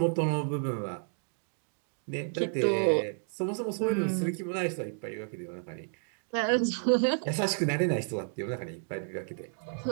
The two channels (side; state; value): left; silent; 57 dB below the other